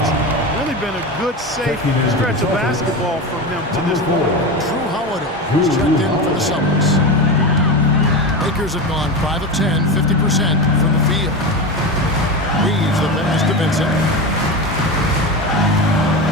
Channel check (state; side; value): normal; both; correlation 0.22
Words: really been a good, safe stretch of basketball from him to this point. Drew Holiday is checked in for the Celtics. Lakers have gone 5 of 10, 50% from the field. Reeves the pass to Vincent.